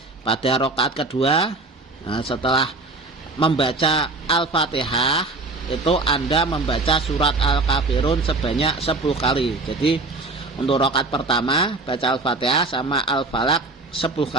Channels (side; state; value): left; quieter; 3.2 dB